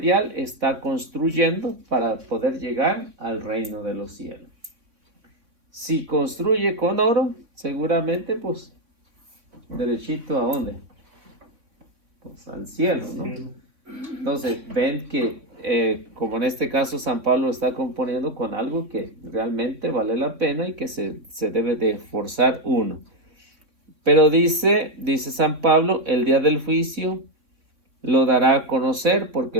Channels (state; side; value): late; left; 3.6 ms